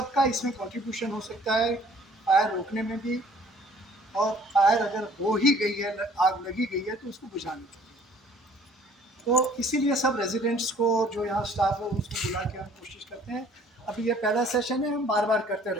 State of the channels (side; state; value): both; normal; correlation 0.55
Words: इसमें कंट्रीब्यूशन हो सकता है फायर रोकने में भी, और फायर अगर हो ही गई है, आग लगी गई है, तो उसको बुझाने के लिए। तो इसीलिए सब रेजिडेंट्स को, जो यहाँ स्टाफ है, उसको बुला के हम कोशिश करते हैं। अभी ये पहला सेशन है, हम बार बार करते